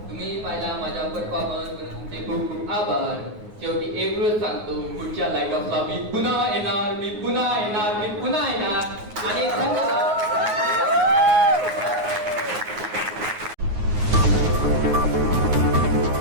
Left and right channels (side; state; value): left; late; 9.5 ms